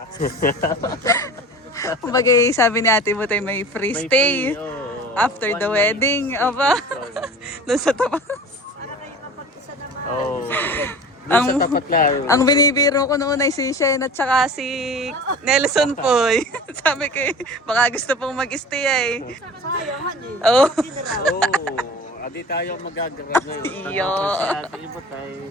Kumbaga sabi ni Ate Butay may free May stay free, oh, after one the night. wedding. Aba, doon sa tapat. Para kayo mapag-isa naman. Oh. Doon sa tapat lang. Ang binibiro ko noon ay si Shen at saka si Nelson po. Sabi ko, baka gusto pong mag-stay eh. Sayang, honey. Oh. Oh, adi tayo magagrab ngayon. Iyo. Si Ate Ibot ay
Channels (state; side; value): normal; both; correlation 0.39